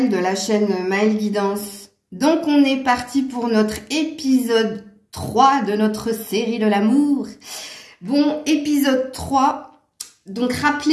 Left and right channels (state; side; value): identical; both; correlation 1.00